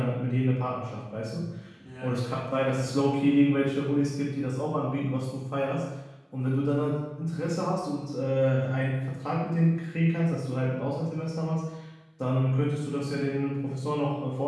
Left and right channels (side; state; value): both; identical; correlation 1.00